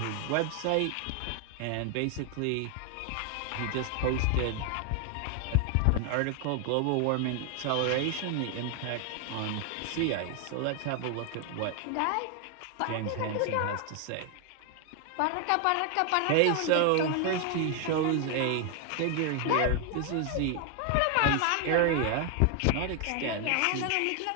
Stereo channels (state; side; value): different; both; correlation 0.00